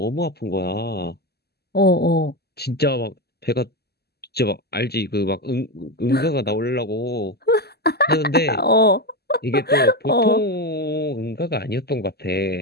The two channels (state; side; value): late; right; 0.46 ms